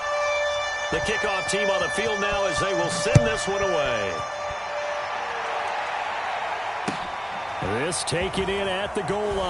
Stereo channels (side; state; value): both; identical; correlation 1.00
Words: The kickoff team on the field now as they will send this one away. This taken in at the goal